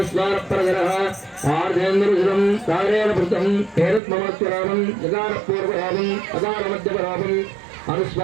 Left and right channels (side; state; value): left; drops out; at 4.0 s